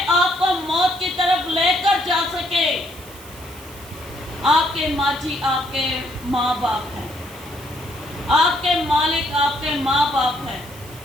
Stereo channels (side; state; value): right; noise; hiss, 19 dB below the sound